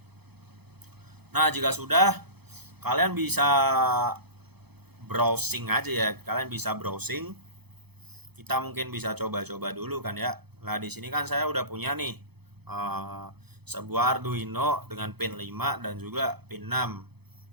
Nah, jika sudah, kalian bisa browsing aja ya. Kalian bisa browsing. Kita mungkin bisa coba-coba dulu kan ya. Nah, di sini kan saya udah punya nih sebuah Arduino dengan pin 5 dan juga pin 6.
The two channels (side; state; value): left; late; 0.98 ms